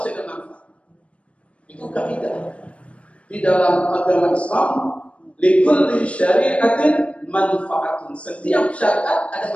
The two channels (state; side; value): late; right; 0.062 ms